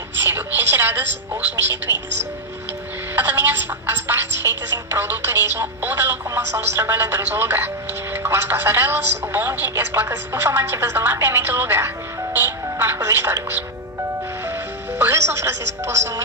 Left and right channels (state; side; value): normal; both; correlation 0.00